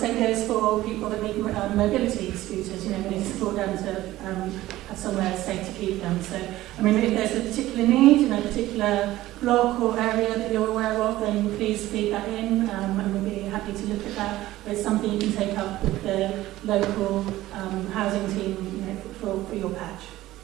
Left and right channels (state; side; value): quieter; left; 16.0 dB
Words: goes for people that need mobility scooters. We need to support them to have somewhere safe to keep them. So, I mean, if there's a particular need in a particular block or area that you're aware of, then please feed that in, and we'll be happy to look at that. But it's something you can take up with the local housing team, for your patch.